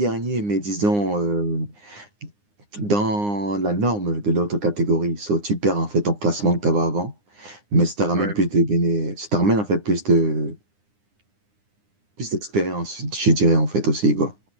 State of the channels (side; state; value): left; late; 9.8 ms